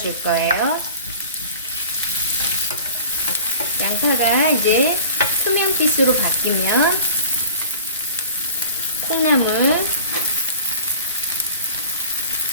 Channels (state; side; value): inverted; both; correlation -0.41